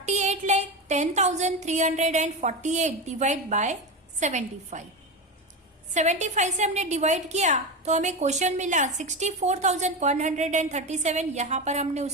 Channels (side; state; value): both; normal; correlation 0.19